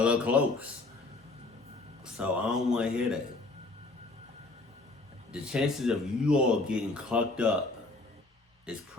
close. So I don't want to hear that. The chances of you all getting clucked up is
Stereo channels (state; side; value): quieter; right; 3.2 dB